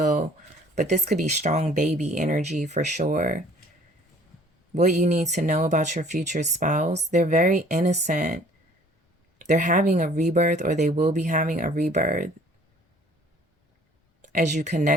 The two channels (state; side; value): normal; both; correlation 0.54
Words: But this could be strong baby energy for sure. What you need to know about your future spouse, they're very innocent. They're having a rebirth, or they will be having a rebirth as you